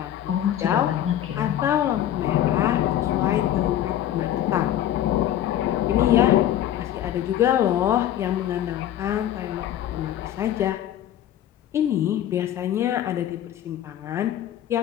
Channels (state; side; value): quieter; right; 11.7 dB